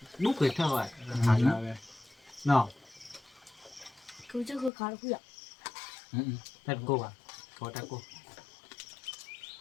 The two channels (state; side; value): drops out; right; at 4.7 s